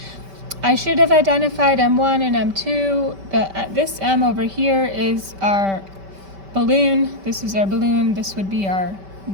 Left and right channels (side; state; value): left; late; 5.1 ms